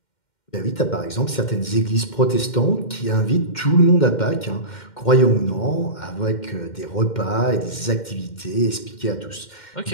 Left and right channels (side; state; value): right; late; 2.1 ms